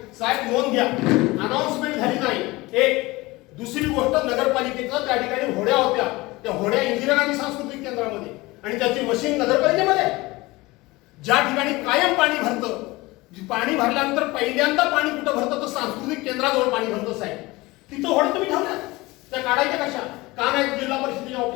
साहेब नोंद घ्या अनाउन्समेंट झाली नाही एक दुसरी गोष्ट नगरपालिकेचं त्या ठिकाणी होड्या होत्या त्या होड्या इंदिरा गांधी सांस्कृतिक केंद्रामध्ये आणि त्याची मशीन नगरपालिकेमध्ये ज्या ठिकाणी कायम पाणी भरतं पाणी भरल्यानंतर पहिल्यांदा पाणी कुठं भरतं तर सांस्कृतिक केंद्राजवळ पाणी भरतं साहेब तिथं होड्या तुम्ही ठेवल्या त्या काढायच्या कशा का नाही जिल्हा परिषदेच्या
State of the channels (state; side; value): quieter; right; 21.3 dB